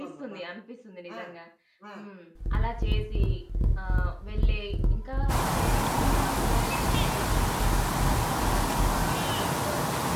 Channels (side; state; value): both; identical; correlation 1.00